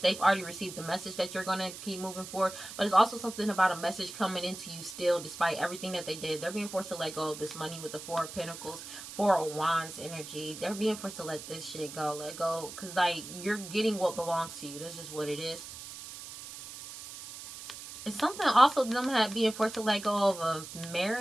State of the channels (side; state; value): right; noise; hiss, 12 dB below the sound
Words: already received the message that you're going to keep moving forward. But it's also something about a message coming into you still, despite everything that they did. They're being forced to let go of this money with the 4 of Pentacles, 4 of Wands energy. They're being forced to let this shit go. Let go. Because, like, you're getting what belongs to you. That's just what it is. It's something also them being forced to let go of a